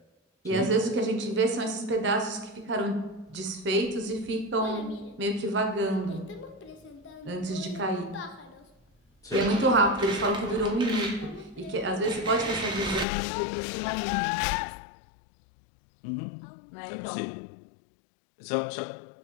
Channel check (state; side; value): drops out; right; at 13.1 s